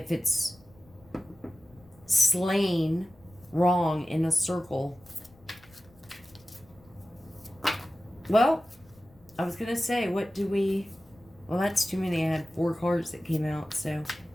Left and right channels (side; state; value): left; noise; rumble, 27 dB below the sound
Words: it's slain wrong in a circle. Well, I was going to say, what do we... Well, that's too many. I had 4 cards that came out, so...